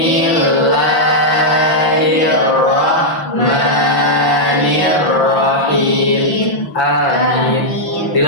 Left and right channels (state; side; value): late; right; 5.7 ms